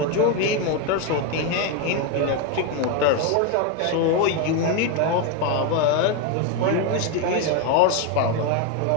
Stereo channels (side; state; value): both; different; correlation 0.02